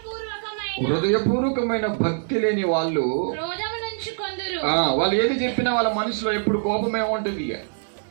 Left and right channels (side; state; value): left; silent; digital silence